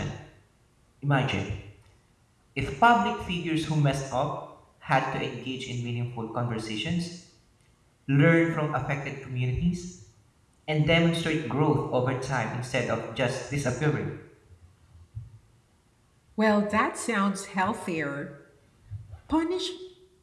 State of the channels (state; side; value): identical; both; correlation 1.00